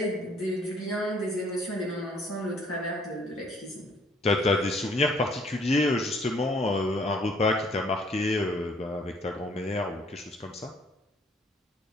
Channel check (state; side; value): normal; both; correlation 0.61